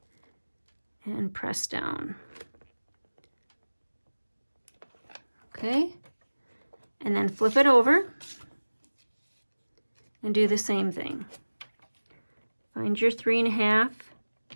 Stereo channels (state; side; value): inverted; both; correlation -1.00